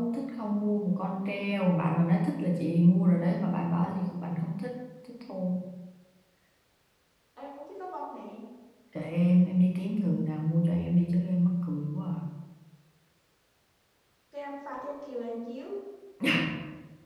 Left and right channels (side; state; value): both; identical; correlation 1.00